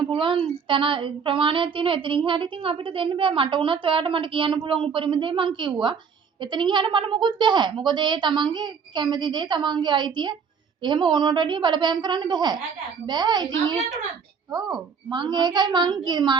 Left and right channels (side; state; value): left; quieter; 6.3 dB